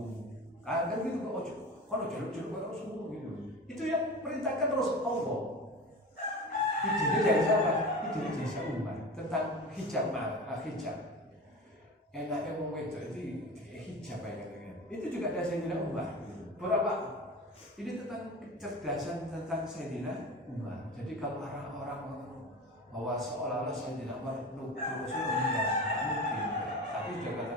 Kan gitu kok ojo. Kalau jelek-jelek kok Rasul gitu. Itu yang perintahkan terus Allah. Idenya dari siapa? Idenya dari Umar tentang hijab. Enaknya wong wedok itu hijab ya katanya. Itu juga dari Sayyidina Umar. Berapa? Ini tentang kecerdasan tentang Sayyidina Umar. Jadi kalau orang-orang bahwa seolah-olah Sayyidina Umar Rasul tidak mungkin. Tapi dia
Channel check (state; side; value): normal; both; correlation 0.31